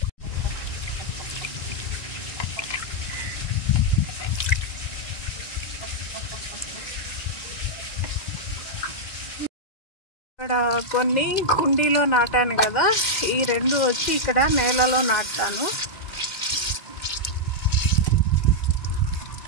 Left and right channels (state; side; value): late; right; 1.9 ms